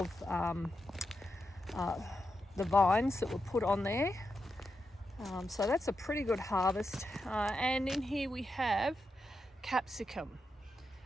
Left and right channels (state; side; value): normal; both; correlation 0.87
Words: the vines that were put on there. So that's a pretty good harvest. And in here we have capsicum.